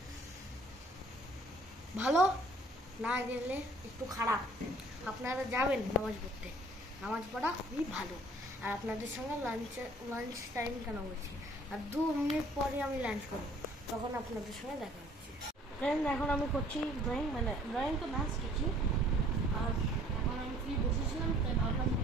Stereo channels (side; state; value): both; normal; correlation 0.56